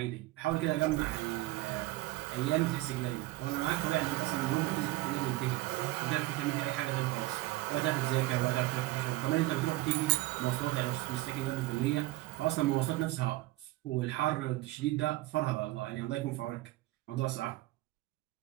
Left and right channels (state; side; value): quieter; left; 18.4 dB